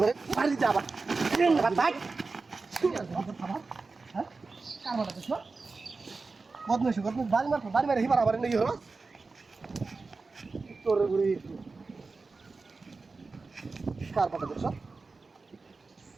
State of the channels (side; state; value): left; quieter; 4.0 dB